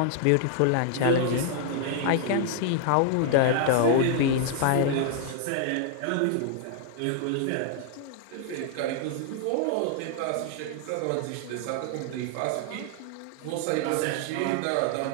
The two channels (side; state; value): both; different; correlation 0.00